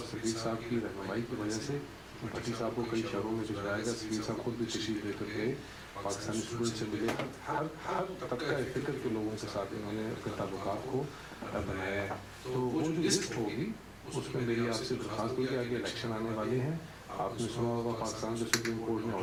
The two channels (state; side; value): identical; both; correlation 1.00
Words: سفیر صاحب کی رہنمائی کی وجہ سے بھٹی صاحب کو کئی شہروں میں بھجوایا گیا. سفیر صاحب خود بھی تشریف لے کر گئے, پاکستانی اسٹوڈنٹ سے ملے, ہر طبقہ فکر کے لوگوں کے ساتھ انہوں نے اپنے تعلقات کو بنایا ہے. تو وہ جو لسٹ ہوگی اس میں میری آپ سے درخواست ہوگی کہ آگے الیکشن آنے والے ہیں. آپ نے سنا ہوگا پاکستان کے سپریم کورٹ نے